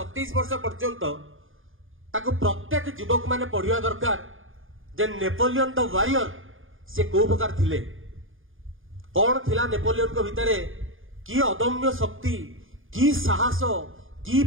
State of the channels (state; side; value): late; left; 0.59 ms